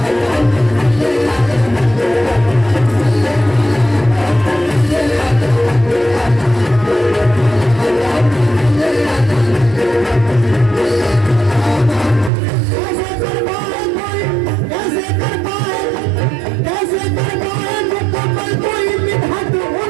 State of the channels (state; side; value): drops out; left; at 12.3 s